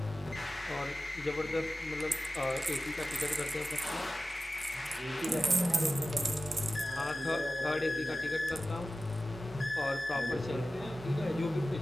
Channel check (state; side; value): normal; both; correlation 0.95